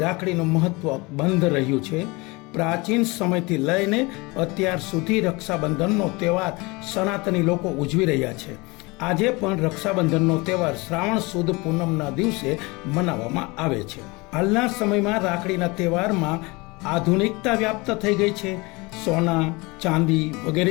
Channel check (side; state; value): right; quieter; 25.2 dB